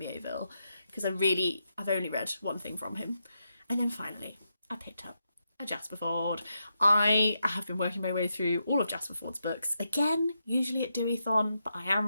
because I've only read one thing from him. And then finally, I picked up a Jasper Fforde. I have been working my way through all of Jasper Fforde's books. Again, usually at Deweython, but I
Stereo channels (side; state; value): both; inverted; correlation -0.84